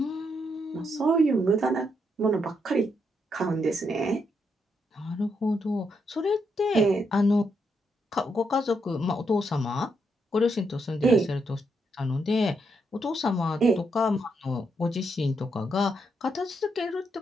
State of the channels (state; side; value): normal; both; correlation 0.79